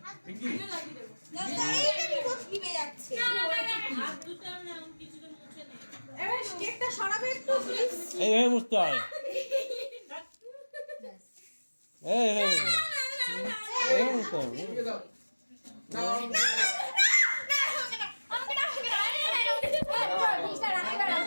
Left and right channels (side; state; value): both; inverted; correlation -1.00